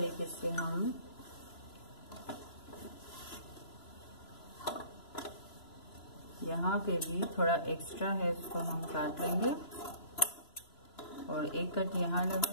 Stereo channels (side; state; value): right; late; 2.9 ms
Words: से हम यहाँ पे भी थोड़ा एक्स्ट्रा है उसको हम काट लेंगे और एक कट यहाँ